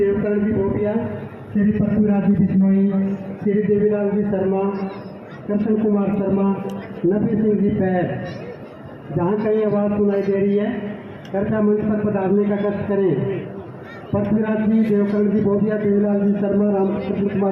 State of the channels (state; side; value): identical; both; correlation 1.00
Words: जी भोटिया, श्री पृथ्वीराज जी बिश्नोई, श्री देवीलाल जी शर्मा, कृष्ण कुमार शर्मा, नबी सिंह जी पैर। जहाँ कहीं आवाज़ सुनाई दे रही है कृपया मंच पर पधारने का कष्ट करें। पृथ्वीराज जी, देवकरण जी भोटिया, देवीलाल जी शर्मा, रामकृष्ण